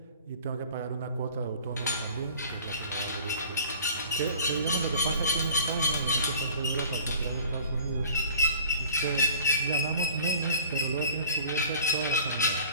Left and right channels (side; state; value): both; inverted; correlation -0.47